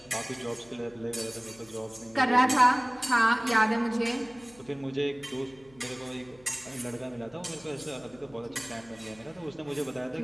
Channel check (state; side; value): noise; left; hum, 27 dB below the sound